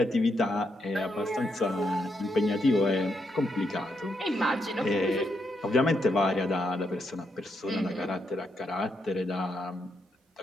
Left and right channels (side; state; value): both; normal; correlation 0.80